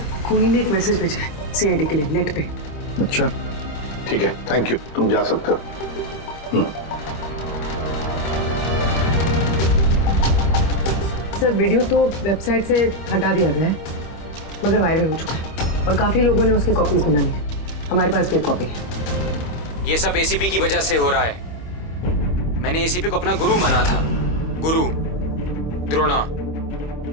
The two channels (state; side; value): late; right; 25 ms